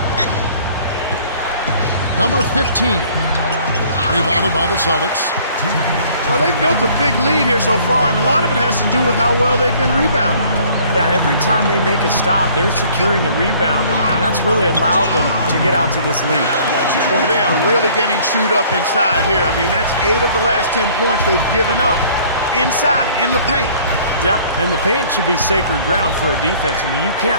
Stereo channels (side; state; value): both; inverted; correlation -0.55